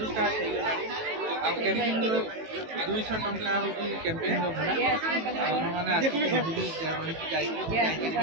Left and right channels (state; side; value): late; left; 18 ms